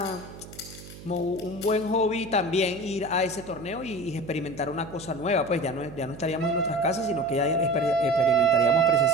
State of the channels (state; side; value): noise; right; hum, 16 dB below the sound